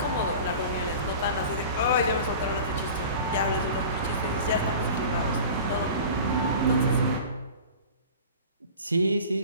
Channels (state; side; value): inverted; both; correlation -0.38